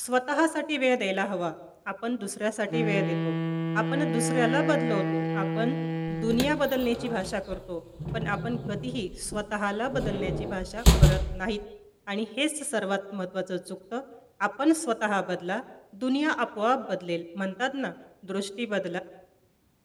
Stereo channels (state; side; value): identical; both; correlation 1.00